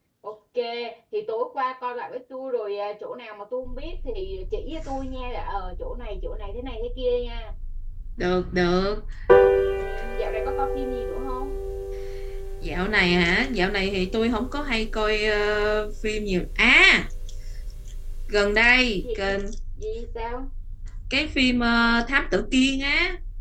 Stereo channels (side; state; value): both; identical; correlation 1.00